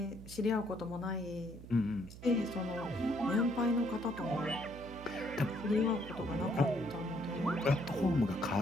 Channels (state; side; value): noise; right; hum, 15 dB below the sound